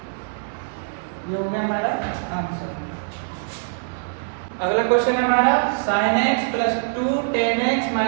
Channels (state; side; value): silent; left; 59 dB below the other